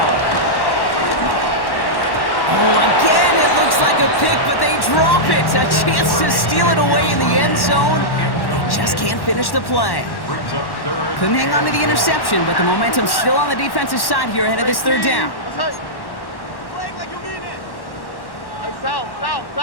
Oh, again, it looks like a pick, but they drop it. A chance to steal it away in the end zone. They just can't finish the play. Couldn't hang on to the interception, but the momentum's still on the defensive side here ahead of this third down. South.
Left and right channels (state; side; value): late; right; 1.1 ms